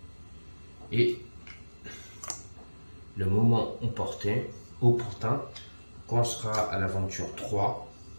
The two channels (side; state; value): both; inverted; correlation -1.00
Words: et le moment opportun, quand on sera à l'aventure 3,